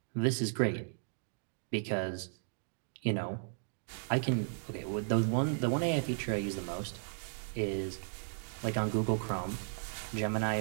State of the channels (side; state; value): left; silent; digital silence